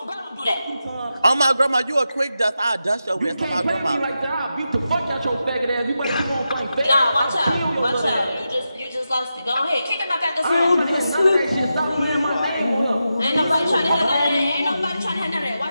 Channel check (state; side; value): inverted; both; correlation -0.89